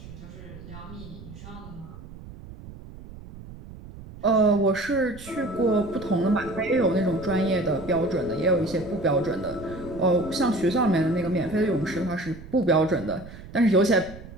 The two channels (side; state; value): right; noise; rumble, 16 dB below the sound